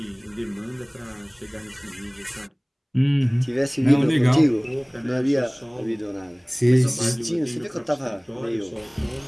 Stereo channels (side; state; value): both; identical; correlation 1.00